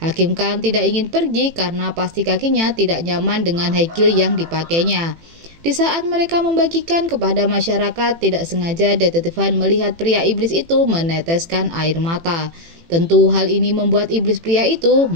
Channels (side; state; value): left; late; 18 ms